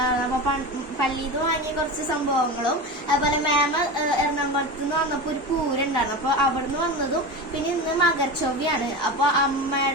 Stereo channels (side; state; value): both; normal; correlation 0.25